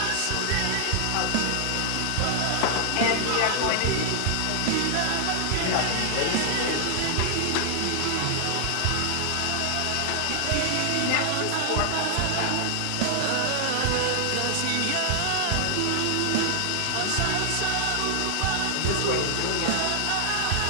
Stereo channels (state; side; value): different; both; correlation 0.00